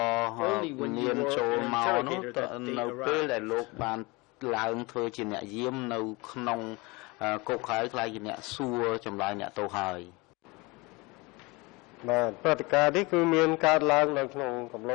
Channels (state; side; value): quieter; right; 25.1 dB